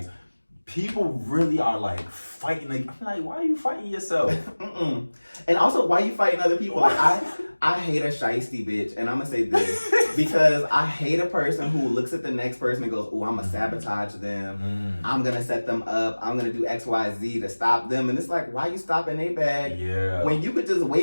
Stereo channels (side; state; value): both; inverted; correlation -1.00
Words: people really are like fighting. Like, I'm like, why are you fighting yourself? Mm-mm. And also, why you fighting other people? Like, I hate a shiesty bitch, and I'm gonna say this because I hate a person who looks at the next person and goes, "Oh, I'm gonna sabotage them. I'm gonna set them up. I'm gonna do X, Y, Z to stop them." And it's like, why you stopping their bag when you could just